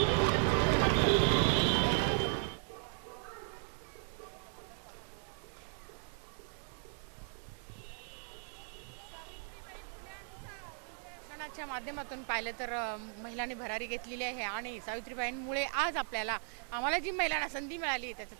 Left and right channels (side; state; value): left; silent; 53 dB below the other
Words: च्या माध्यमातून पाहिलं तर महिलांनी भरारी घेतलेली आहे आणि सावित्रीबाईंमुळे आज आम्हाला जी महिलांना संधी मिळाली